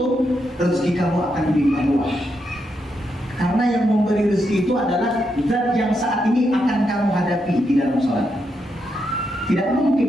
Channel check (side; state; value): both; normal; correlation 0.82